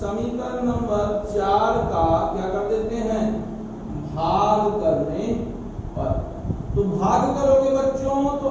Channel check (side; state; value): both; identical; correlation 1.00